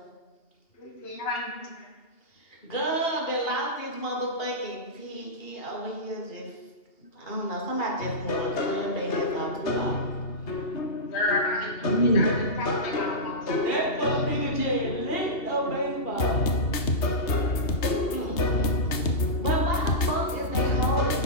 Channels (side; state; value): right; late; 2.8 ms